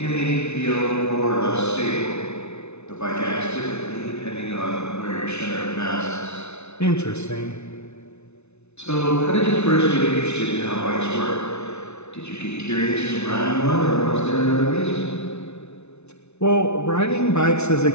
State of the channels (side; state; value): right; late; 0.81 ms